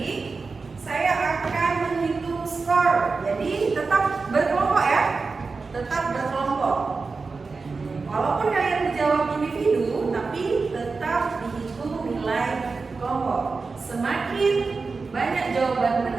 saya akan menghitung skor. Jadi tetap berkelompok, ya. Tetap berkelompok. Walaupun kalian menjawab individu, tapi tetap dihitung nilai kelompok. Semakin banyak jawaban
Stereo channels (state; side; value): quieter; left; 4.3 dB